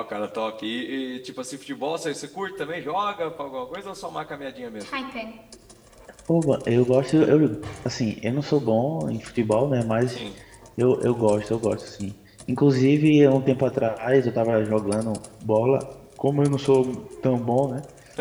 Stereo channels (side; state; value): both; identical; correlation 1.00